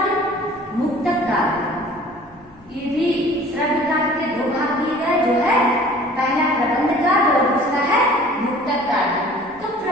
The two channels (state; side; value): noise; left; hum, 29 dB below the sound